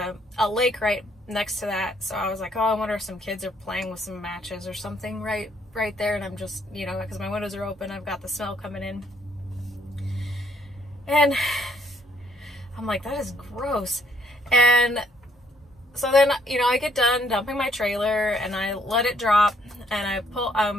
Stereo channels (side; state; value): both; normal; correlation 0.68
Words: lake right next to that. So I was like, oh, I wonder if some kids are playing with some matches or something right there. And I'm just, because my windows are open, I've got the smell coming in. And I'm like, that is gross. And so then, I get done dumping my trailer and I let it drop and